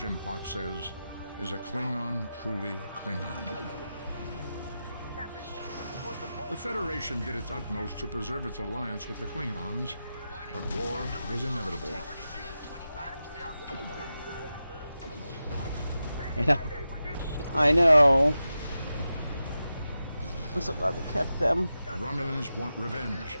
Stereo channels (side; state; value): both; inverted; correlation -0.91